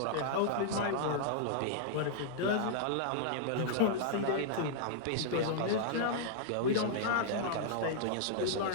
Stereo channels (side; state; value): both; different; correlation -0.01